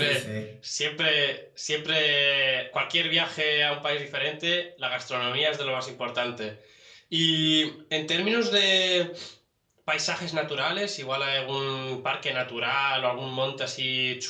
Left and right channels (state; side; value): identical; both; correlation 1.00